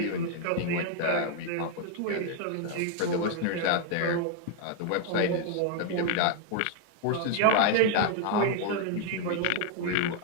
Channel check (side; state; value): both; different; correlation 0.00